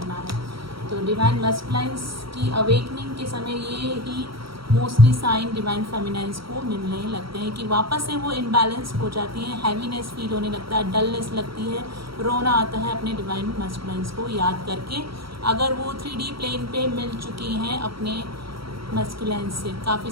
है। तो डिवाइन मैस्कुलाइंस की अवेकनिंग के समय ये ही मोस्टली साइन डिवाइन फेमिनाइंस को मिलने लगते हैं कि वापस से वो इनबैलेंस हो जाती हैं, हैवीनेस फील होने लगता है, डलनेस लगती है, रोना आता है अपने डिवाइन मैस्कुलाइंस को याद करके, अगर वो 3D प्लेन पे मिल चुकी हैं अपने मैस्कुलाइंस से। काफ़ी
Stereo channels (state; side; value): late; left; 0.75 ms